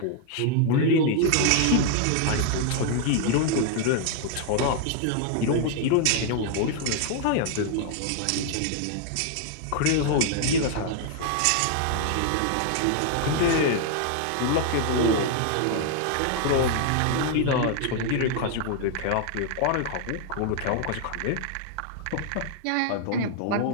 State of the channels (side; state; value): both; different; correlation 0.00